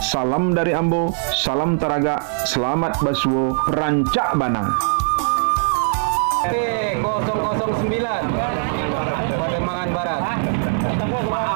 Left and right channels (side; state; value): left; silent; digital silence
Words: dari Ambo, salam Taraga, selamat Basuo, Rancak Banang. P009 Pademangan Barat.